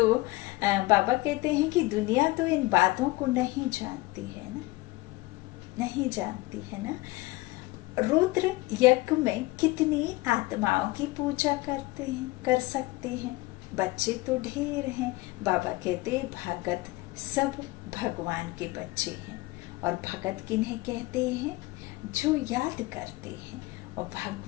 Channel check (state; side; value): quieter; right; 20.8 dB